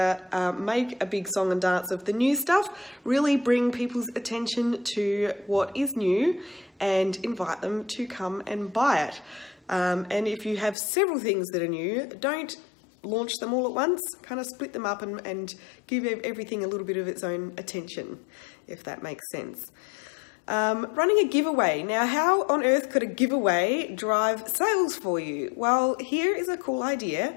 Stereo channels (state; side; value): drops out; right; at 10.8 s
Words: Make a big song and dance of the new stuff. Really bring people's attention to what is new and invite them to come and buy it. And if you have several things that are new, don't launch them all at once. Kind of split them up and give everything a little bit of its own attention, if that makes sense. Running a giveaway. Now, how on earth could a giveaway drive sales for you? Well, here is a cool idea.